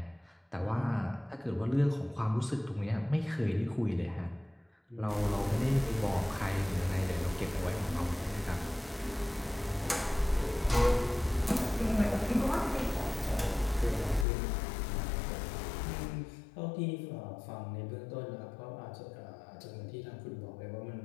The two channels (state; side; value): drops out; right; at 14.2 s